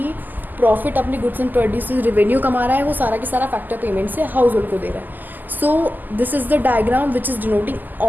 प्रॉफिट अपने गुड्स एंड प्रोड्यूस रेवेन्यू कमा रहा है वो सारा की सारा फैक्टर पेमेंट से हाउस होल्ड को दे रहा है। So this is the diagram which is denoting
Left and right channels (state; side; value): late; left; 0.086 ms